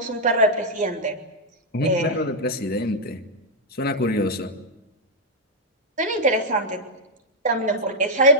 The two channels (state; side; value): normal; both; correlation -0.03